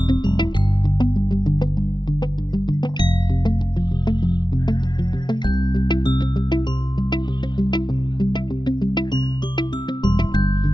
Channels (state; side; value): late; right; 0.21 ms